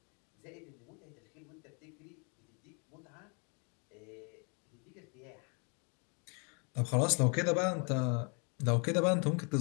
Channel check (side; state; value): right; quieter; 36.1 dB